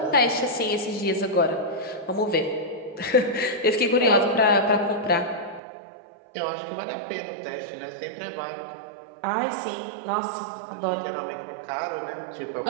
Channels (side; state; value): left; drops out; at 5.6 s